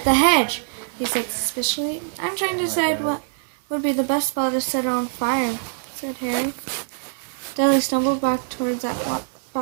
the hedge?" he said suspiciously. "I'm trying to decide what would be the best spot to set on fire," said Harry. Dudley stumbled backward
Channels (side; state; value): left; silent; digital silence